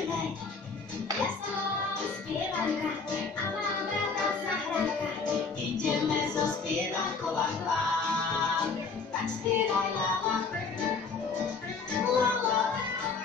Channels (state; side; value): quieter; right; 4.8 dB